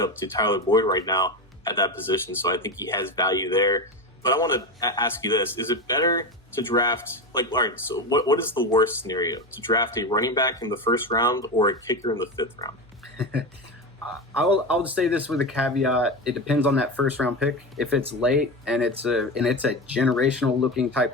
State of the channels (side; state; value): both; normal; correlation 0.20